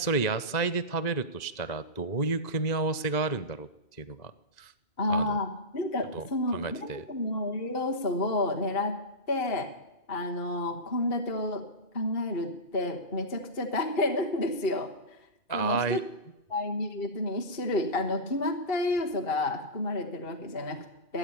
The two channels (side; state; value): right; late; 2.0 ms